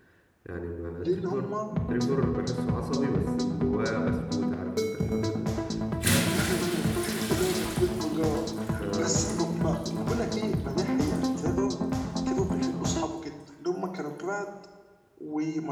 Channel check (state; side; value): identical; both; correlation 1.00